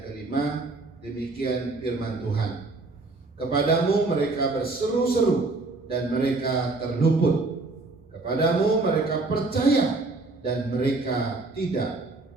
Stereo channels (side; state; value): left; quieter; 3.4 dB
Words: kelima, demikian firman Tuhan. Kepadamu mereka berseru-seru dan mereka terluput. Kepadamu mereka percaya dan mereka tidak